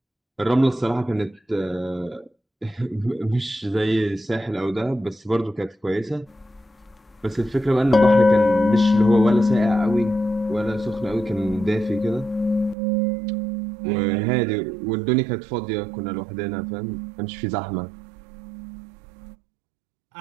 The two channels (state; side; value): drops out; left; at 12.8 s